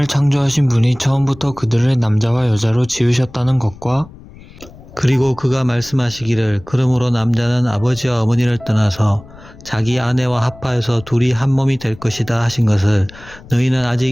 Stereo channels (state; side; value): noise; left; rumble, 20 dB below the sound